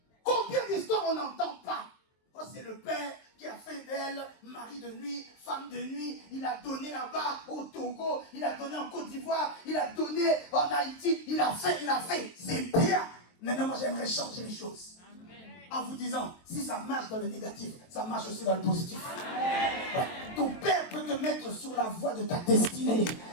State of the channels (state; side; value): late; right; 23 ms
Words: combien d'histoires on n'entend pas? Oh, c'est le Père qui a fait d'elle mari de nuit, femme de nuit. Il a donné là-bas au Togo, il a donné en Côte d'Ivoire, il a donné en Haïti, il a fait. C'est bien. Maintenant, moi, j'aimerais changer les choses. En vous disant, si ça marche dans le négatif, ça marche aussi dans le positif. Ouais. Ton Père peut te mettre sur la voie de ta destinée.